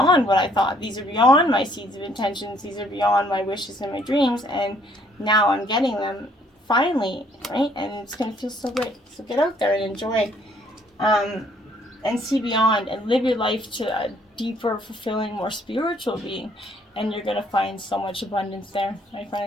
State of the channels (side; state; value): both; normal; correlation 0.64